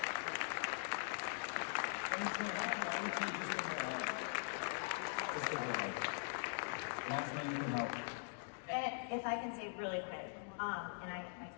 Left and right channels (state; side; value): silent; right; digital silence